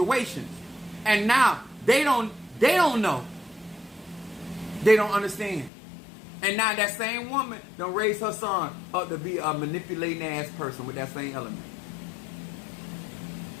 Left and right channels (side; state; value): right; drops out; at 5.7 s